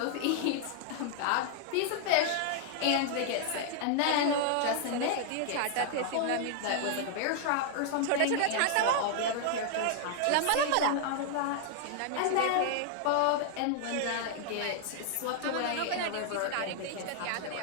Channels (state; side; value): different; both; correlation 0.00